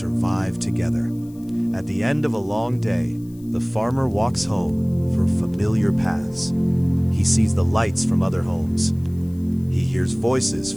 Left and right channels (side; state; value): left; noise; hiss, 28 dB below the sound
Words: together. At the end of a long day, the farmer walks home through familiar paths. He sees the lights from other homes. He hears voices